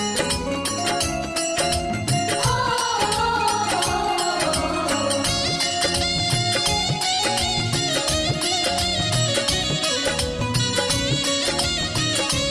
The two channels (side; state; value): both; identical; correlation 1.00